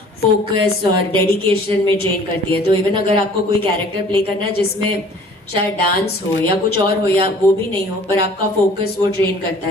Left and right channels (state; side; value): normal; both; correlation 0.51